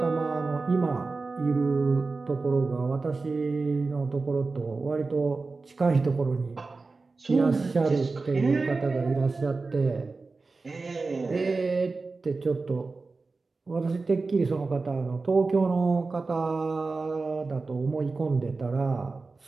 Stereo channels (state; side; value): quieter; left; 3.9 dB